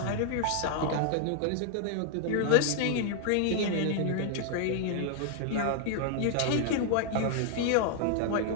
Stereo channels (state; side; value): different; both; correlation 0.00